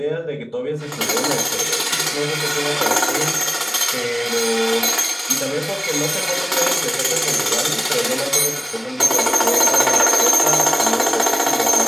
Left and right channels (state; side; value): identical; both; correlation 1.00